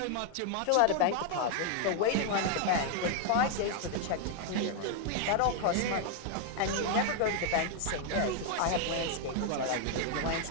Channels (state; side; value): different; both; correlation 0.00